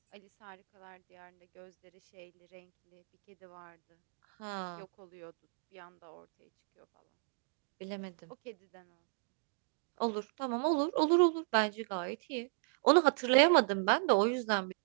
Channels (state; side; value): silent; left; digital silence